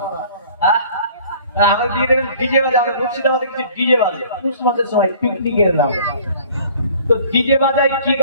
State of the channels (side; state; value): both; inverted; correlation -0.51